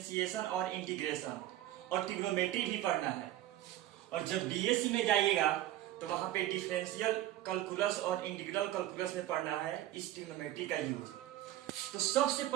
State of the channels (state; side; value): quieter; left; 14.0 dB